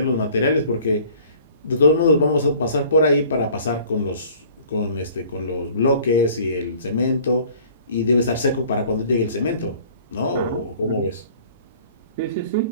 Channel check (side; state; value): both; inverted; correlation -0.51